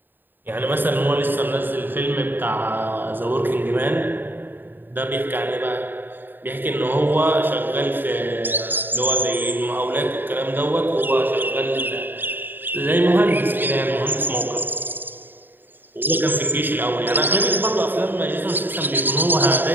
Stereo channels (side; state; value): left; late; 0.093 ms